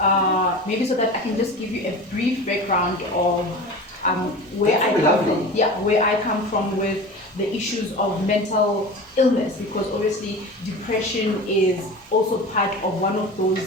maybe so that I can just give you a brief background of where I come from. Yeah, where I come from with the issues of mental illness, because obviously depression is also part of one of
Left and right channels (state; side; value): normal; both; correlation 0.33